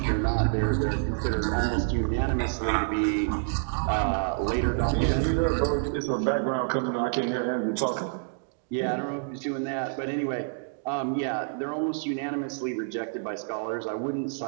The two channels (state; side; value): silent; left; digital silence